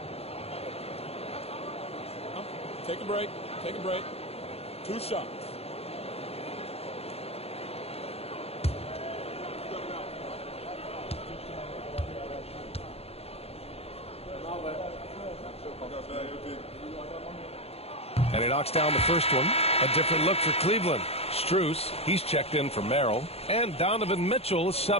Take a break. Take a break. 2 shots. And he knocks down the first one. A different look for Cleveland. Strus, he's checked in for Merrill. And Donovan Mitchell is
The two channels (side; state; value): right; late; 0.29 ms